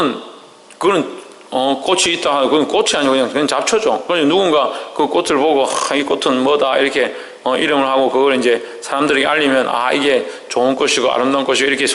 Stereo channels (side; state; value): both; identical; correlation 1.00